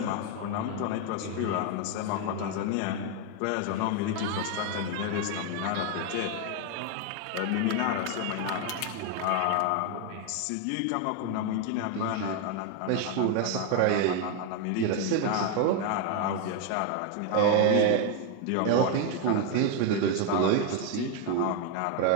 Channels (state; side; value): different; both; correlation 0.01